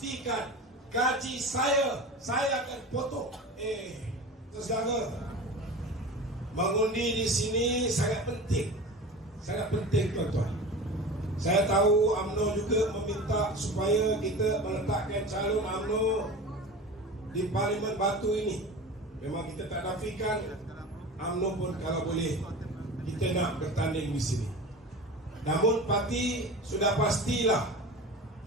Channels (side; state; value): both; normal; correlation 0.33